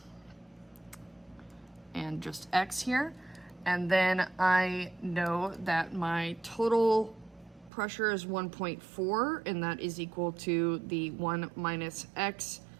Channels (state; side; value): drops out; left; at 7.7 s